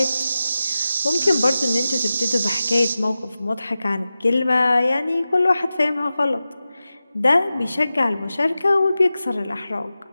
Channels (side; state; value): both; inverted; correlation -0.94